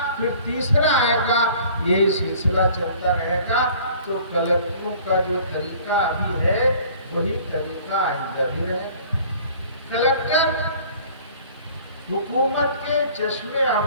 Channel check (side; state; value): both; inverted; correlation -0.50